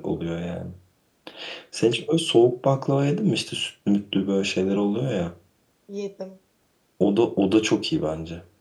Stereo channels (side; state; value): both; identical; correlation 1.00